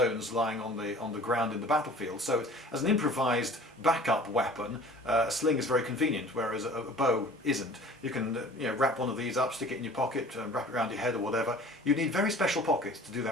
lying on the ground in the battlefield. So as an improvised backup weapon, a sling is very convenient, whereas a bow isn't. You can wrap one of these up, stick it in your pocket, wrap it around your head or whatever. You need very special pockets to do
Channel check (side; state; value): both; normal; correlation 0.46